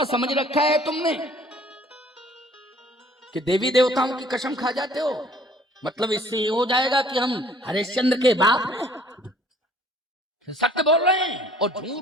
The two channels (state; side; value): normal; both; correlation 0.55